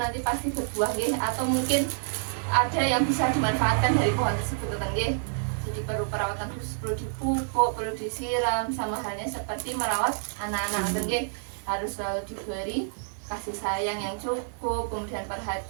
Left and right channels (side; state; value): left; silent; 59 dB below the other